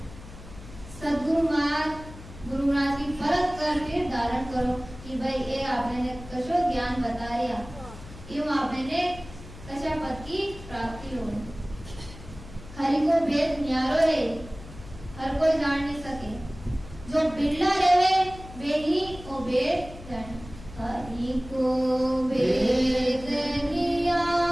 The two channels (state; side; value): noise; left; hum, 16 dB below the sound